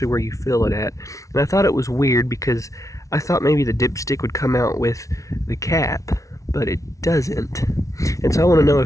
where you fill it at. And I thought it was weird because I thought maybe the dipstick would come out with the cap, but it doesn't. And so I want to know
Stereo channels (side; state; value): right; late; 0.16 ms